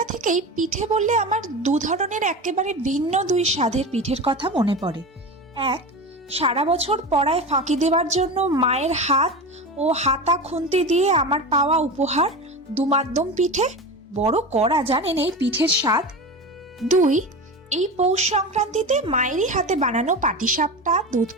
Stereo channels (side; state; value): both; normal; correlation 0.26